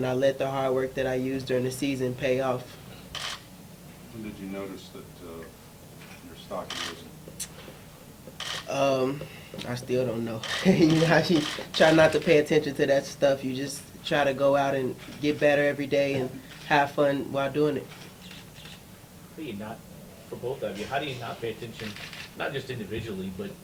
I let the hard work that I used during the season pay off. When did you notice that your stock had risen? I still don't know. You know, you try not to pay attention to that stuff. You just try to go out and get better every day and have fun while doing it. How do you not, for both of you, how do you not pay attention, not just individually, but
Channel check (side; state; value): both; identical; correlation 1.00